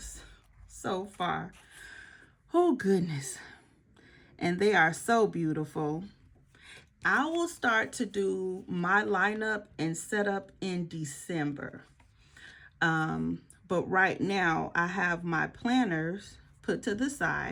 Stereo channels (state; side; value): identical; both; correlation 1.00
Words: so far. Oh goodness. And they are so beautiful. I will start to do my lineup and setup in December. But right now I have my planners put to the